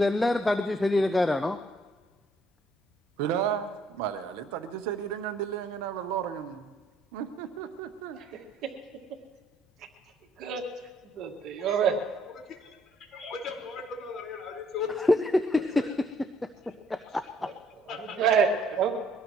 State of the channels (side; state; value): both; normal; correlation 0.65